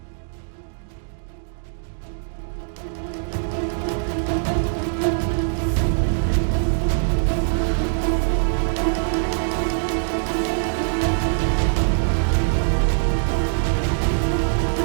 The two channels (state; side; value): silent; left; digital silence